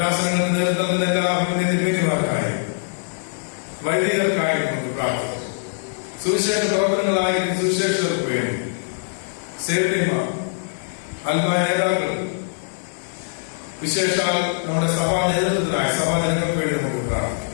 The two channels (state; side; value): silent; right; 62 dB below the other